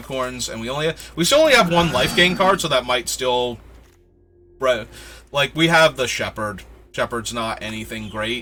and we still only have 1 life gain card, so that might still... Like, we have the Shepherd. Shepherd's not anything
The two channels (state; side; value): identical; both; correlation 1.00